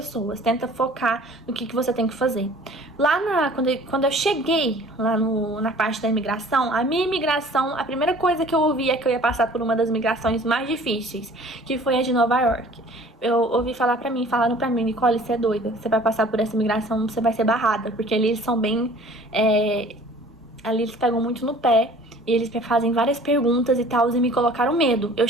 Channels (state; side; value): normal; both; correlation 0.50